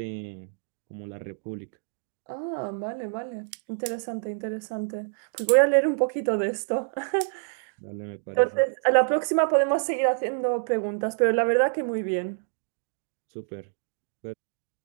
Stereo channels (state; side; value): silent; left; digital silence